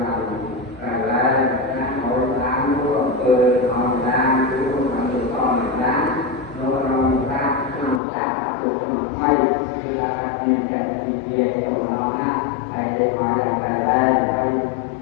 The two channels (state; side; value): drops out; right; at 8.0 s